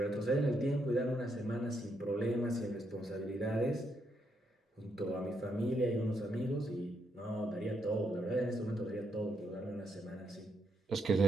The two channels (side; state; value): both; normal; correlation 0.78